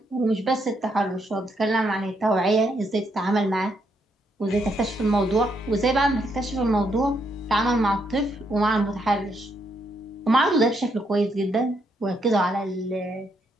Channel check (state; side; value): normal; both; correlation 0.76